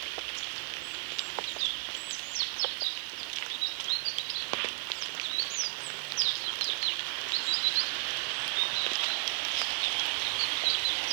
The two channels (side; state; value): left; silent; 55 dB below the other